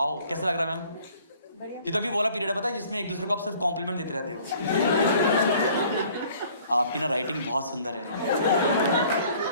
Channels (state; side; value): inverted; both; correlation -0.55